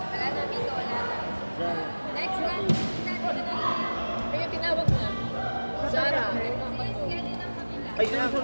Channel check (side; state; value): both; inverted; correlation -1.00